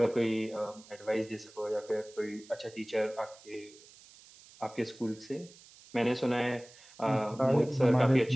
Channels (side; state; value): right; noise; hiss, 23 dB below the sound